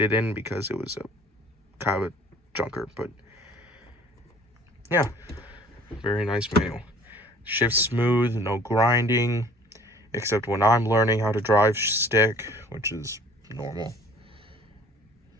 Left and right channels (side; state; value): both; normal; correlation 0.52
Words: in because it was a kind of a junker, but yeah, very nice manual. Shifts smooth, no grinding, except when I'm learning how to drive stick, which is normal.